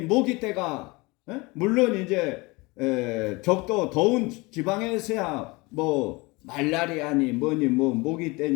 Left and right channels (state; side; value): quieter; right; 24.6 dB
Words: 모기 때가 물론 이제 적도 더운 지방에서야 뭐 말라리아니 뭐니 뭐 모기